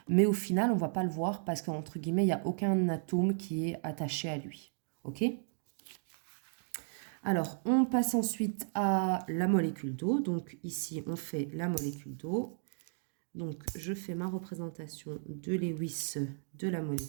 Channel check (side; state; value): left; silent; digital silence